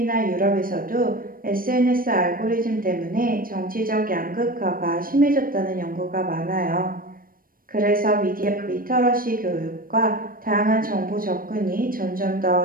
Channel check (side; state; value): left; late; 0.41 ms